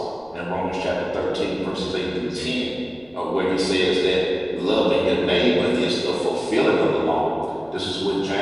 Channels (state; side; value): noise; right; rumble, 29 dB below the sound